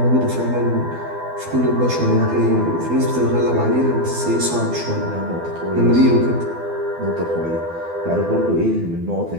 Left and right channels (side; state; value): left; late; 12 ms